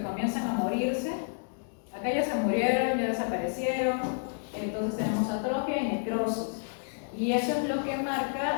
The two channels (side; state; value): right; silent; digital silence